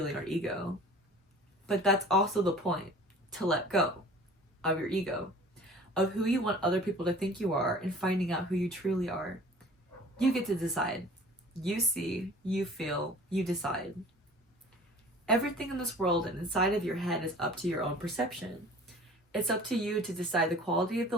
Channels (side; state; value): both; normal; correlation 0.46